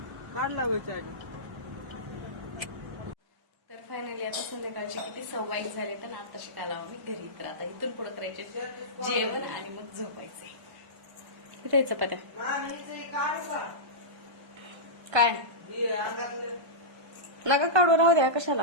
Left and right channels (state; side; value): late; left; 1.3 ms